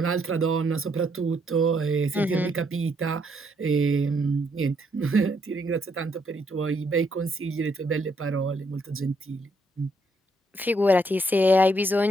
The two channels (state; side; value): normal; both; correlation 0.73